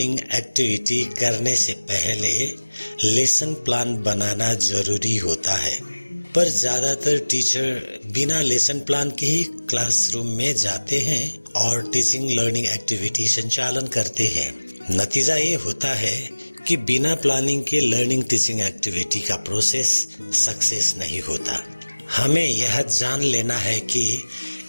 एक्टिविटी करने से पहले लेसन प्लान बनाना जरूरी होता है। पर ज़्यादातर टीचर बिना लेसन प्लान के ही क्लासरूम में जाते हैं और टीचिंग लर्निंग एक्टिविटी संचालन करते हैं। नतीजा ये होता है कि बिना प्लानिंग के लर्निंग टीचिंग एक्टिविटी का प्रोसेस सक्सेस नहीं होता। हमें यह जान लेना है कि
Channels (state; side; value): inverted; both; correlation -1.00